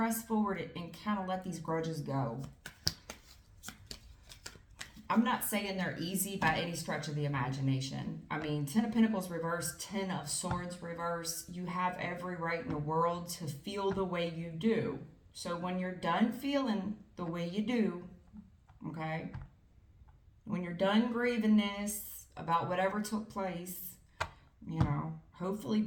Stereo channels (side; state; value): both; identical; correlation 1.00